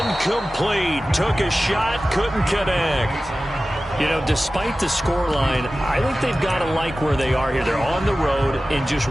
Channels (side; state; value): both; normal; correlation 0.96